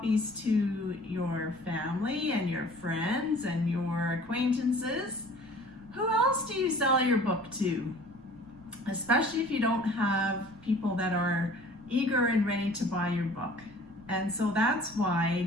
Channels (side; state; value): right; noise; rumble, 24 dB below the sound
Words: to your family and your friends and your acquaintances, who else do you sell your book to? Especially if you don't have people that are eager and ready to buy your book. And so that's why